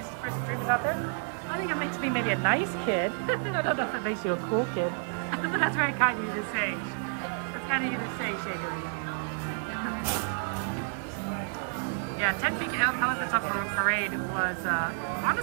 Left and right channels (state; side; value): silent; left; 58 dB below the other